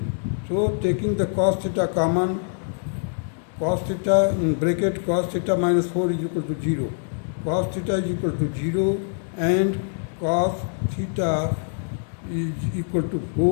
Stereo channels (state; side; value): silent; right; 62 dB below the other